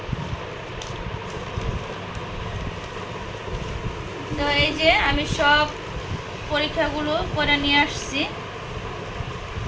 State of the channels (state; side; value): identical; both; correlation 1.00